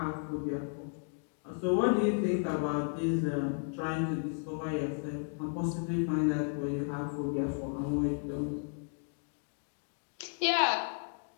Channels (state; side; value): silent; right; 55 dB below the other